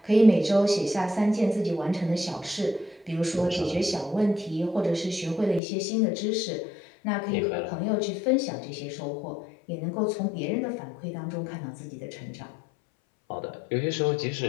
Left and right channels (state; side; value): drops out; right; at 5.6 s